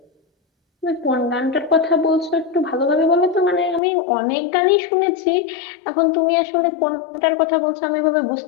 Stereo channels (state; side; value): drops out; right; at 3.8 s